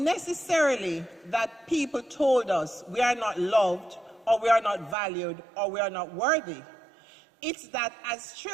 that people told us we are not loved or we are not valued or we are not worthy. It's that as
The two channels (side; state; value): left; drops out; at 5.0 s